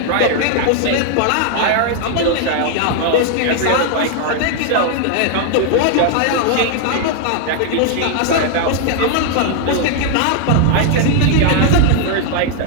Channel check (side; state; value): both; different; correlation 0.00